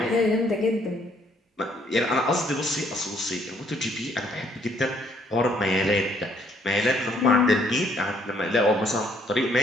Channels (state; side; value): normal; both; correlation 0.67